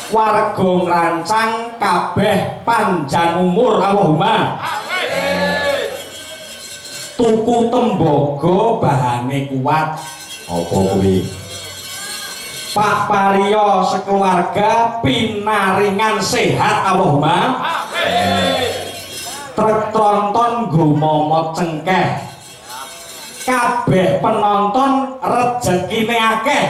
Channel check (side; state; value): both; identical; correlation 1.00